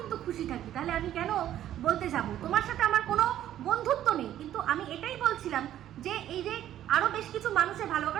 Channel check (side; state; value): left; quieter; 12.0 dB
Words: খুশি থাকি, তাহলে আমি কেন বলতে যাব? তোমার সাথে আমার কোনো বন্ধুত্ব নেই, কিন্তু আমি এটাই বলছিলাম যে এই যে আরো বেশ কিছু মানুষের ভালো,